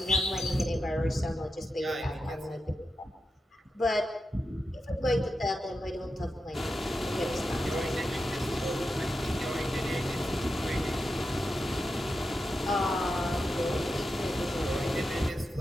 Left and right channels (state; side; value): normal; both; correlation 0.88